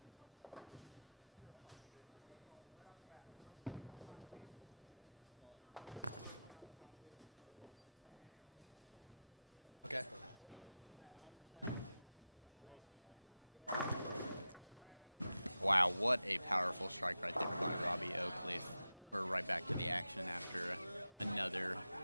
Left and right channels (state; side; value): inverted; both; correlation -0.91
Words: Okay. Wow, what a powerful strike right there by Robbie Oakleaf. We're right back to the action after another